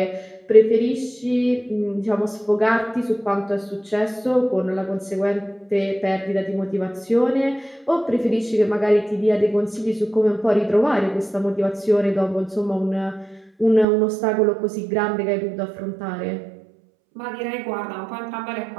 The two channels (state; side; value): drops out; left; at 13.9 s